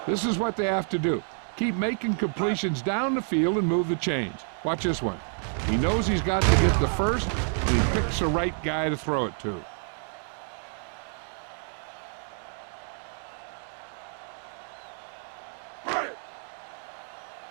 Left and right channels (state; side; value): silent; left; 55 dB below the other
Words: This is what they have to do. Keep making completions down the field and move the chains. Watch this one. He knows he's got to get the first, and he picks the right guy to throw it to.